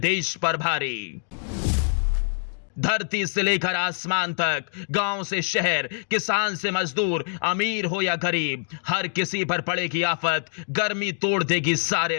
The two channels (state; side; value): silent; right; 62 dB below the other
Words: पर भारी। धरती से लेकर आसमान तक, गांव से शहर, किसान से मजदूर, अमीर हो या गरीब, हर किसी पर पड़ेगी आफत, गर्मी तोड़ देगी